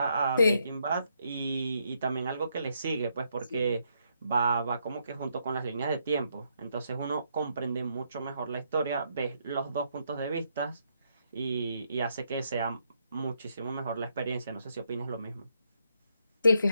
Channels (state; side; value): inverted; both; correlation -0.77